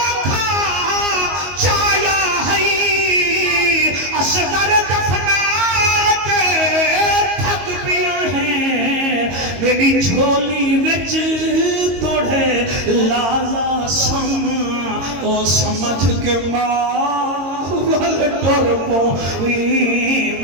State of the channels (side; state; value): left; late; 22 ms